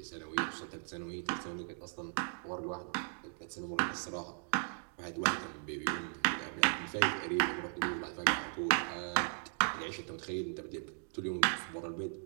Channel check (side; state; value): left; silent; 53 dB below the other